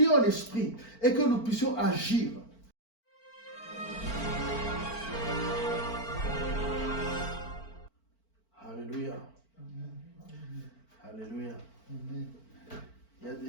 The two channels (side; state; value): right; late; 4.5 ms